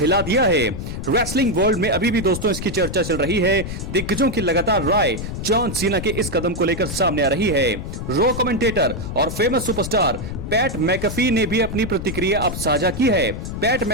दिया है। रेसलिंग वर्ल्ड में अभी भी दोस्तों इसकी चर्चा चल रही है। दिग्गजों की लगातार राय जॉन सीना के इस कदम को लेकर सामने आ रही है। रो कमेंटेटर और फेमस सुपरस्टार पैट मैकफी ने भी अपनी प्रतिक्रिया अब साझा की है। पैट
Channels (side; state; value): left; noise; rumble, 7 dB below the sound